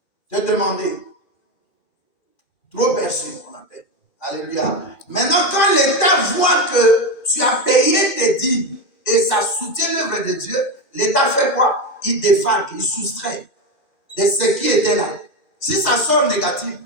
te demander. Trop perçu, on appelle. Alléluia. Maintenant, quand l'État voit que tu as payé tes dîmes et ça soutient l'œuvre de Dieu, l'État fait quoi? Il défalque, il soustrait de ce qui était là. Si ça sort négatif,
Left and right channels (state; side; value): late; right; 2.1 ms